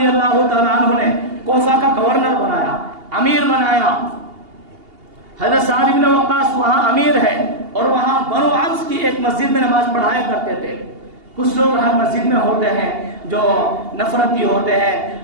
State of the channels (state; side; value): late; left; 2.8 ms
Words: اللہ تعالیٰ عنہ نے کوفہ کا گورنر بنایا، امیر بنایا۔ حضرت سعد بن وقاص وہاں امیر ہے، اور وہاں بنو عوف کی ایک مسجد میں نماز پڑھایا کرتے تھے۔ کچھ لوگ ہر مسجد میں ہوتے ہیں جو نفرتی ہوتے ہیں